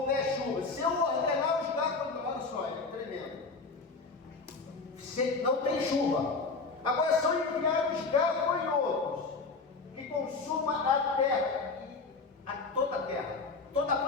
houver chuva, se eu ordenar os gafanhotos, olha só, é tremendo, se não tem chuva, agora são enviados gafanhotos que consumam a terra, toda a terra, toda a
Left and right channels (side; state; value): right; quieter; 4.2 dB